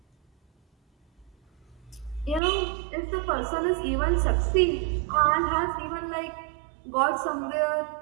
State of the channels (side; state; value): left; drops out; at 2.4 s